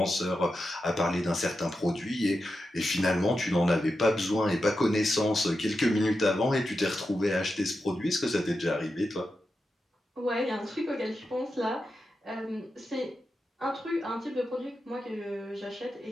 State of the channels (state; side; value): normal; both; correlation 0.89